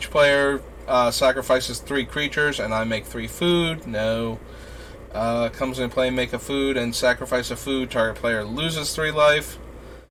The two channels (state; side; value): identical; both; correlation 1.00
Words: player sacrifices 3 creatures, and I make 3 food. No. Comes into play, make a food, and sacrifice a food. Target player loses 3 life.